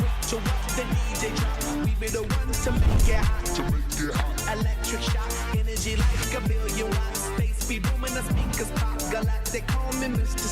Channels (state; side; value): identical; both; correlation 1.00